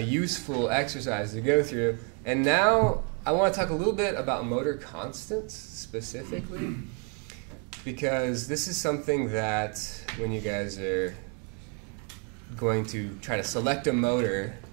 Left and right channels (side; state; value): left; quieter; 35.9 dB